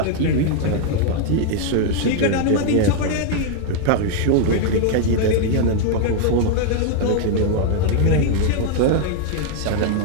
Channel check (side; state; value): both; different; correlation 0.00